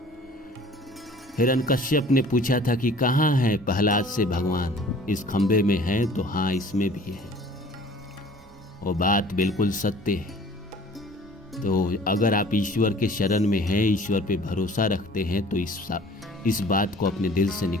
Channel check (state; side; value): normal; both; correlation 0.49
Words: हिरण्यकश्यप ने पूछा था कि कहाँ है प्रहलाद से भगवान, इस खंबे में है, तो हाँ इसमें भी है। वो बात बिल्कुल सत्य है। तो अगर आप ईश्वर के शरण में हैं, ईश्वर पे भरोसा रखते हैं, तो इस बात को अपने दिल से